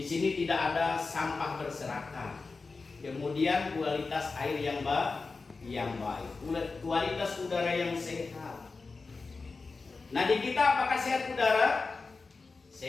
sini tidak ada sampah berserakan. Kemudian kualitas air yang baik, kualitas udara yang sehat. Nah, di kita apakah sehat udara?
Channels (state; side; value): quieter; right; 4.1 dB